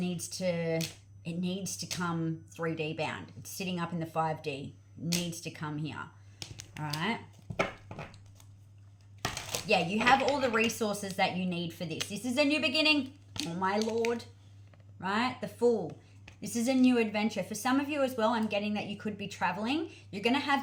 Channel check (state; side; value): identical; both; correlation 1.00